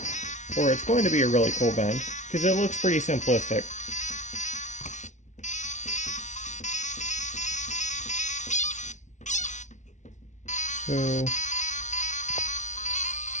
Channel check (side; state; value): right; late; 0.35 ms